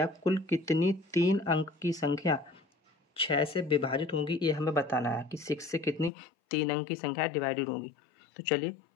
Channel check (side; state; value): right; drops out; at 6.1 s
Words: कुल कितनी 3 अंक की संख्या 6 से विभाजित होंगी, ये हमें बताना है कि 6 से कितनी 3 अंक की संख्या डिवाइडेड होंगी। तो चलिए